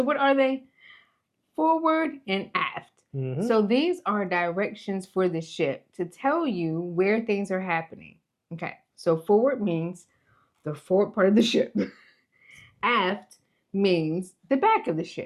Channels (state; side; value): identical; both; correlation 1.00